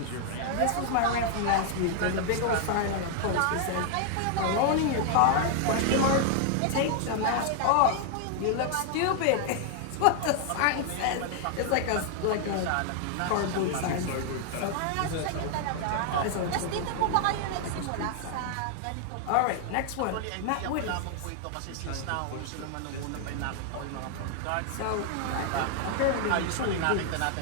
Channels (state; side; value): different; both; correlation 0.00